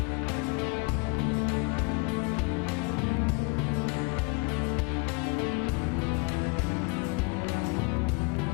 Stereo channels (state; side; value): quieter; right; 30.7 dB